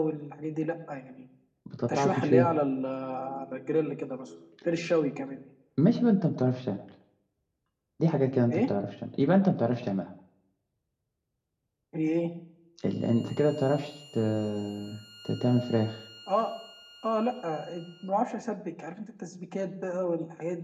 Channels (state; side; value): identical; both; correlation 1.00